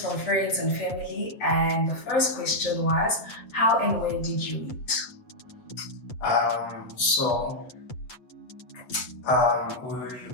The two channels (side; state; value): right; late; 7.9 ms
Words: friends and family, and the first question was, how and when did you meet? Um, so